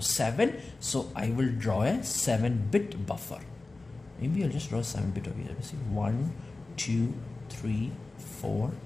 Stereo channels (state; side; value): quieter; right; 3.3 dB